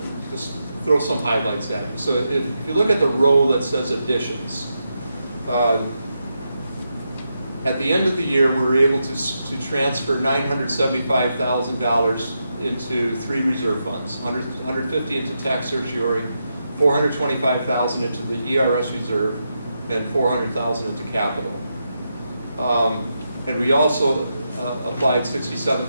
just throw some highlights at you. So if you look at the row that says additions, at the end of the year, we were able to transfer $975,000 into 3 reserve funds, $150 into tax certiorari, $425,000 into the ERS reserve, and $400,000 into capital. And we also applied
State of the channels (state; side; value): inverted; both; correlation -0.85